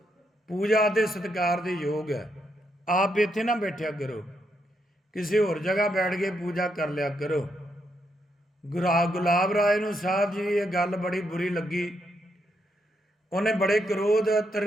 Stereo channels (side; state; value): both; normal; correlation 0.79